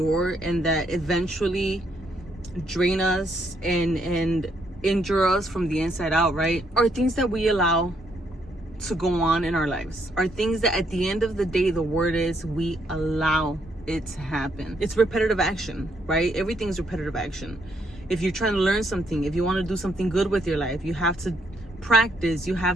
and that eventually drain us and injure us from the inside out, right, are things that we allow to go on in our lives, are things that at the end of the day, the word is we allow it to happen. It's repetitive action, right? Everything's repetitive action. If you're trying to learn something, if you want to do something good with your life, you have to practice, you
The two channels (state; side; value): normal; both; correlation 0.73